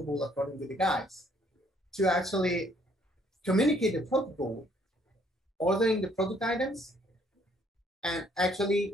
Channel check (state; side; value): normal; both; correlation 0.65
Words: according to the guides, to actually communicate the product goal, ordering the product items, and actually